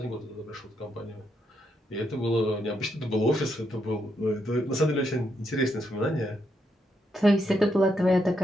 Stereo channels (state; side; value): normal; both; correlation 0.79